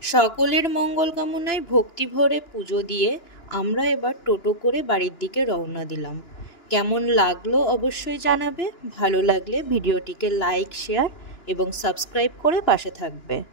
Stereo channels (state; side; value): late; right; 2.9 ms